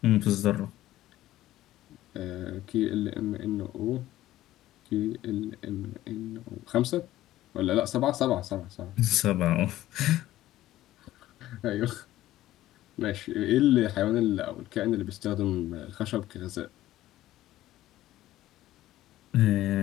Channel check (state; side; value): quieter; right; 14.8 dB